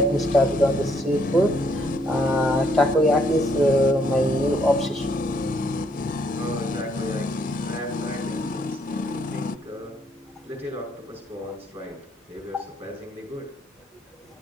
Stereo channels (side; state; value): both; normal; correlation 0.70